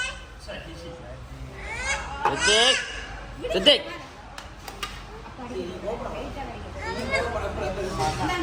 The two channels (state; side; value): identical; both; correlation 1.00